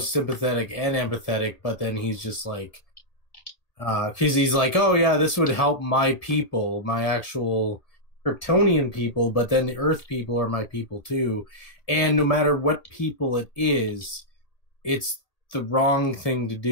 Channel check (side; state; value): right; late; 1.8 ms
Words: sympathetic and empathetic, but then he's just like, because he's like, oh yeah, this would help my people, my actual Kryptonian people, but then the Earth people are my people too, and no matter what people it is, it's the wrong thing to